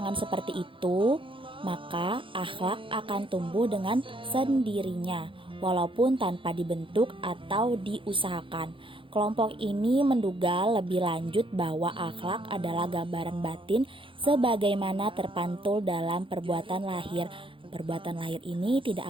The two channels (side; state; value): left; late; 0.25 ms